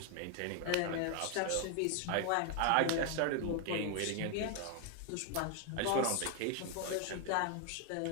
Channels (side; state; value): both; different; correlation 0.00